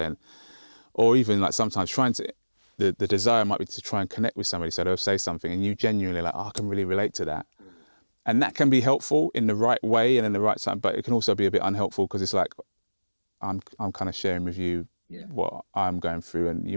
Or even like sometimes trying to, the desire might be to try and connect with somebody, so they'll say something and you genuinely like, I can really relate to that. And that can be helpful in the right way and in the right time, but it can also be a bit unhelpful because it's like, I'm kind of sharing with you what I'm going through, and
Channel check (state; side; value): inverted; both; correlation -1.00